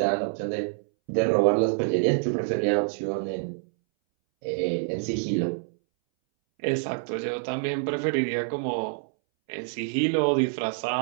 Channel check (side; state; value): left; silent; 61 dB below the other